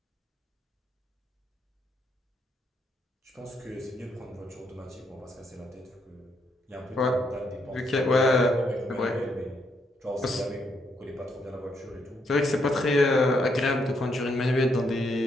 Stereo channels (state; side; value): normal; both; correlation 0.76